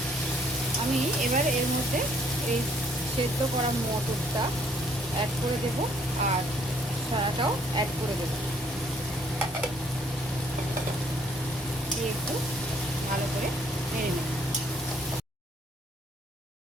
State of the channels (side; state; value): both; normal; correlation 0.64